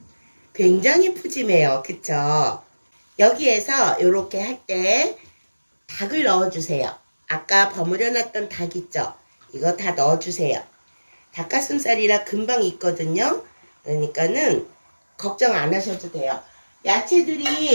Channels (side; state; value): both; inverted; correlation -1.00